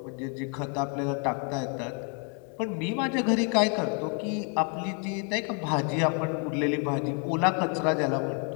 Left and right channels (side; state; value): right; quieter; 37.1 dB